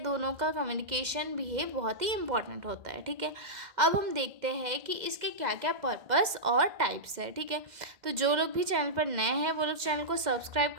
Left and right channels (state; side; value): late; left; 2.1 ms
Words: का कम्युनिकेशन भी है बहुत ही इम्पॉर्टेंट होता है। ठीक है, अब हम देखते हैं कि इसके क्या क्या पर्पस और टाइप्स है। ठीक है, तो जो लोग भी चैनल पर नए हैं वो लोग चैनल को सब्सक्राइब